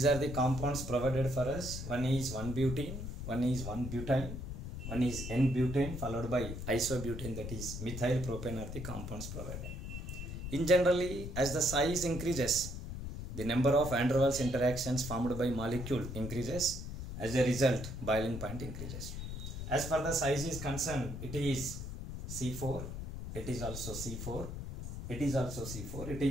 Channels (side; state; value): left; noise; rumble, 7 dB below the sound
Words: are the compounds provided for us. One is 1-butene, one is 1-butane, one is N-butane followed by isobutane, that is methyl propane are the compounds provided. In generally, as the size increases, the number of van der Waals interactions formed by molecule increases. As a result, boiling point increases. As far the size is concerned, it is C4, it is also C4, it is also C4, it